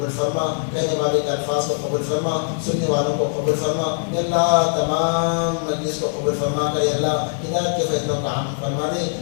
فرما کہنے والے کے الفاظ کو قبول فرما سننے والوں کو قبول فرما یا اللہ تمام مجلس کو قبول فرما کر یا اللہ ہدایت کے فیصلوں کا عام فرما دے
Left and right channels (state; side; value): silent; right; digital silence